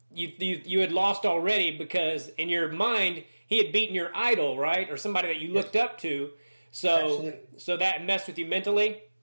you had lost already because in your mind he had beaten your idol, right, or somebody that you looked up to. So that messed with you mentally.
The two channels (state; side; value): inverted; both; correlation -1.00